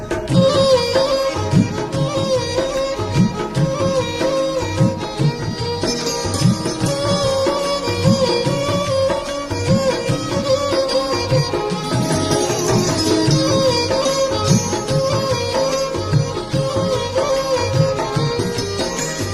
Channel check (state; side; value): identical; both; correlation 1.00